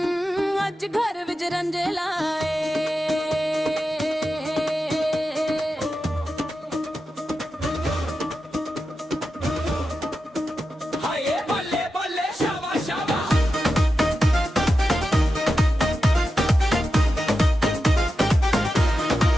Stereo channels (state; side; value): normal; both; correlation 0.90